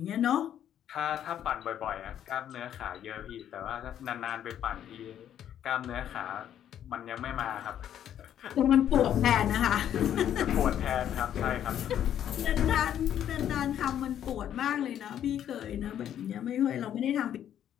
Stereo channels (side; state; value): right; quieter; 10.3 dB